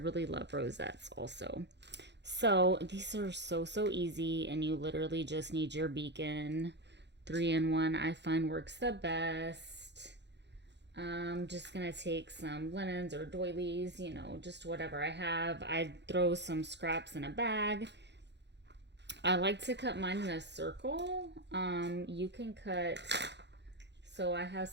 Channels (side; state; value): left; late; 0.51 ms